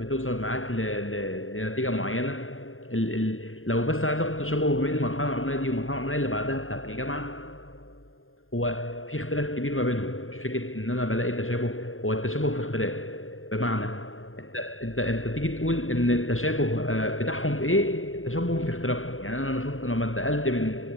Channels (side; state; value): right; late; 0.60 ms